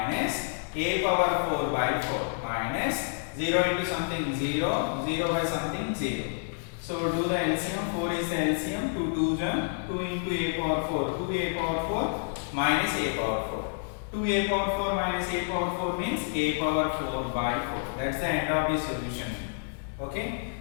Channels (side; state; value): right; silent; digital silence